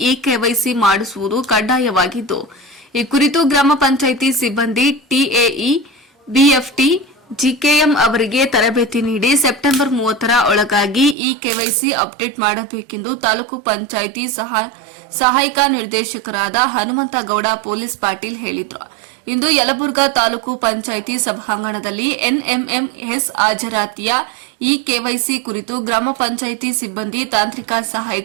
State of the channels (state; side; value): drops out; left; at 11.2 s